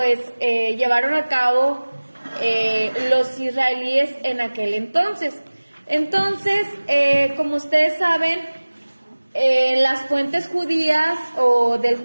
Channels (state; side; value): inverted; both; correlation -1.00